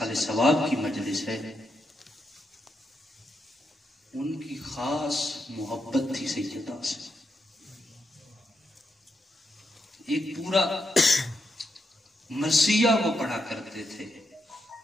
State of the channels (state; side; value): normal; both; correlation 0.83